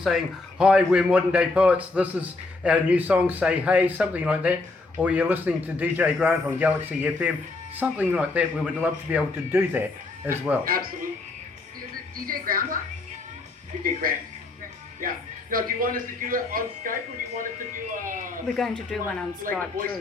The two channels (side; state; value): right; quieter; 3.4 dB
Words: hi, we're Modern Day Poets, this is our new song, Say Hey, something like that. Or you're listening to DJ Grant on Galaxy FM, something like that. We would love to be able to do that as well. Absolutely. Is it DJ Grandpa? DJ Grant. Yeah. Now, do you want us to do it on Skype, or do you want us to do We're going to do one on like a Skype voice too.